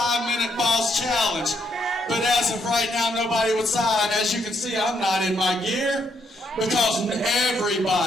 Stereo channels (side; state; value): both; normal; correlation 0.75